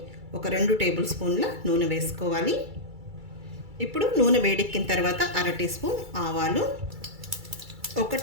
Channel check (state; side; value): late; left; 2.3 ms